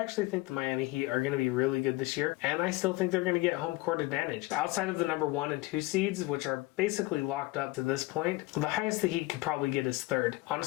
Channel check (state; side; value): quieter; right; 20.6 dB